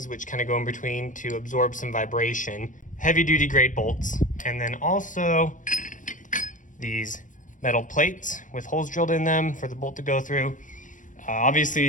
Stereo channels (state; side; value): late; right; 0.37 ms